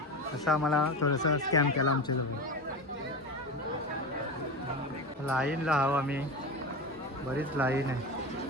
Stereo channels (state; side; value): normal; both; correlation 0.23